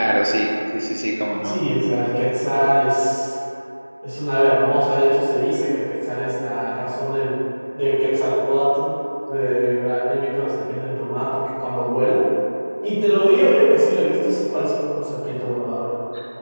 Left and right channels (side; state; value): both; inverted; correlation -1.00